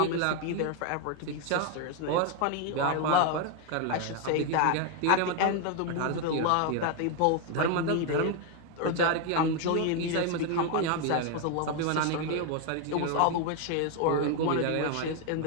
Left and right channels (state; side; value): different; both; correlation 0.01